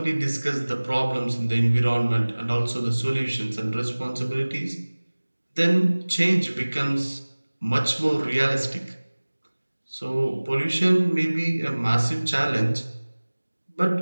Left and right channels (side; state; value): both; inverted; correlation -1.00